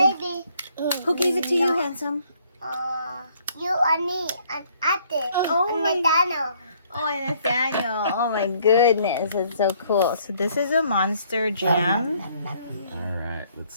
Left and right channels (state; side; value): inverted; both; correlation -0.64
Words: who gave it to you, handsome? You and me and Ate Oh and my- Nathaniel. Oh, and Nathaniel. Oh my goodness, that's so cool. So this is a monster jam. Alright, let's